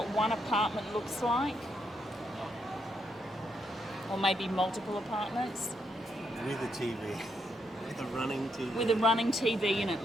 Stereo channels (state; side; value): normal; both; correlation 0.78